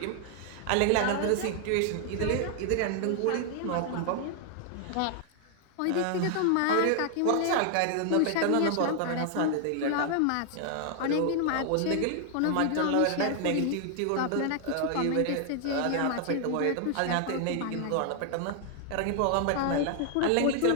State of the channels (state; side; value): different; both; correlation 0.00